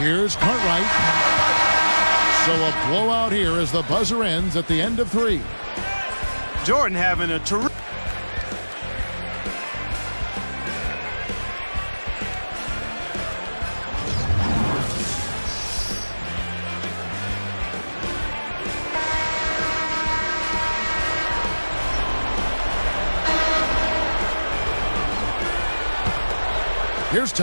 Here's Cartwright. So a blowout here as the buzzer ends at the end of 3. Jordan having a terrific... Here's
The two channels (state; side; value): inverted; both; correlation -1.00